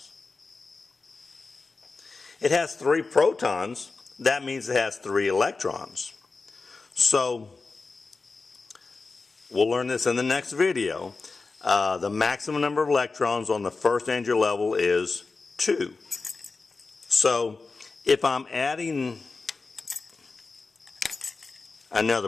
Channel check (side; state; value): right; quieter; 4.0 dB